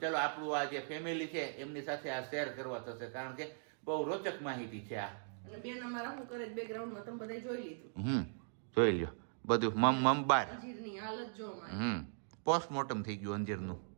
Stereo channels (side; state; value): left; silent; digital silence